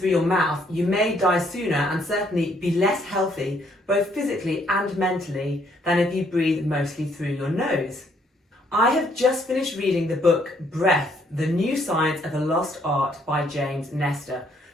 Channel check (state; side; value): normal; both; correlation 0.68